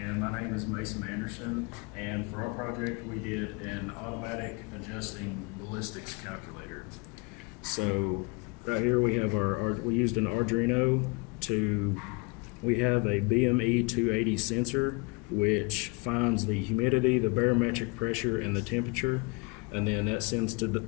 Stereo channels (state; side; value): quieter; right; 28.7 dB